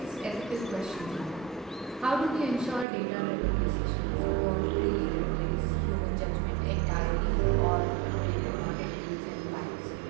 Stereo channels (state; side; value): drops out; left; at 2.9 s